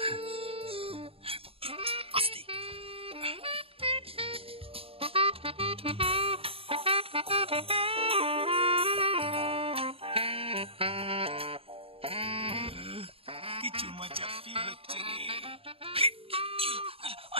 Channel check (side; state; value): left; late; 0.27 ms